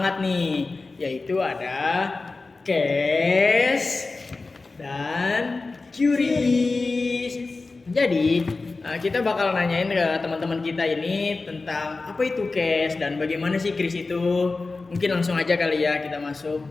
nih, yaitu ada cash dan QRIS. Jadi kita bakal nanyain ke teman-teman kita ini tentang apa itu cash dan bagaimana sih QRIS itu. Mungkin langsung aja kali ya kita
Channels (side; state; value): right; quieter; 3.7 dB